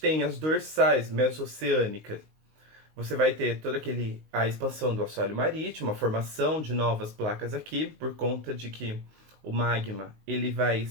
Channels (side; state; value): left; late; 19 ms